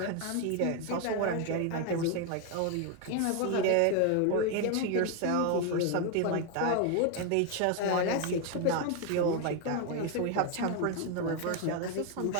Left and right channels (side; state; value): both; different; correlation 0.01